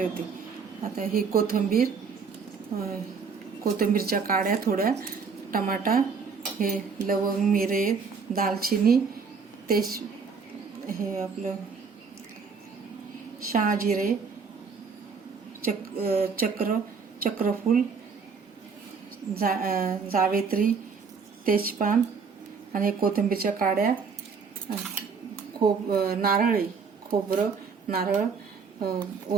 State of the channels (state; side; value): quieter; left; 5.5 dB